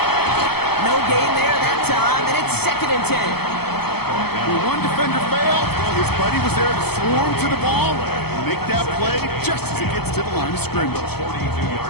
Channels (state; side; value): late; right; 0.96 ms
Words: No gain there that time, and it's 2nd and 10. When one defender failed, well, his buddy was there to swarm to the ball and make that play just as it gets to the line of scrimmage.